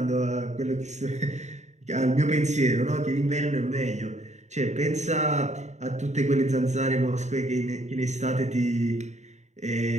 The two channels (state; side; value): late; left; 0.34 ms